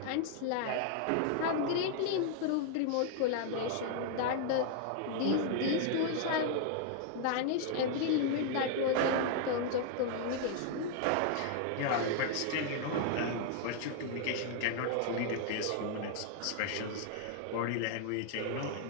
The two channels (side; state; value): both; different; correlation 0.00